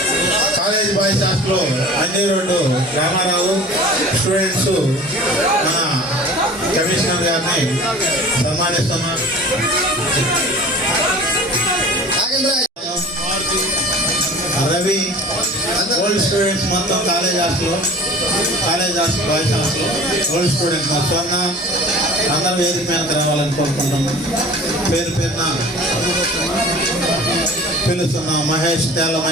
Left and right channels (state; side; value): normal; both; correlation 0.42